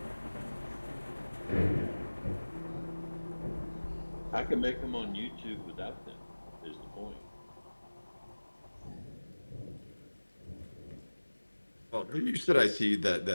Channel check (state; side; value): inverted; both; correlation -1.00